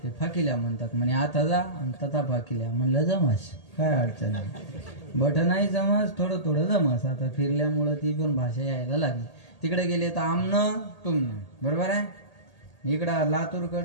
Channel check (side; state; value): right; late; 1.8 ms